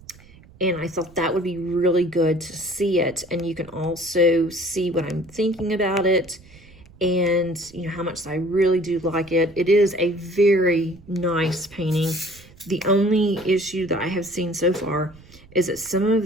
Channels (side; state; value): right; noise; rumble, 24 dB below the sound